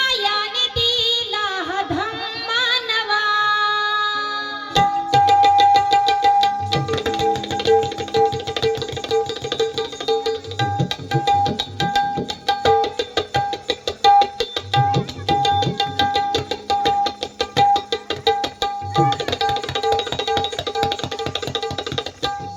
दिला हा धम्मा नवा.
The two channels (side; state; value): both; identical; correlation 1.00